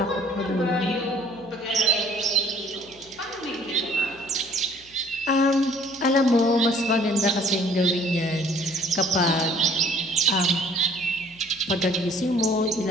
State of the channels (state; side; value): noise; left; hum, 27 dB below the sound